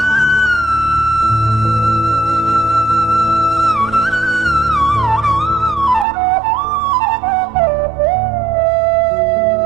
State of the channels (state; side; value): drops out; left; at 6.1 s